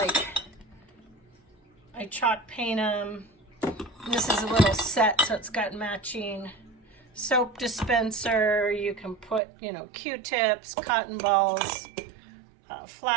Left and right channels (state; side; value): drops out; left; at 9.4 s